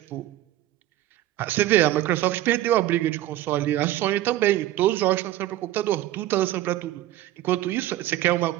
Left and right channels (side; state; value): left; quieter; 14.3 dB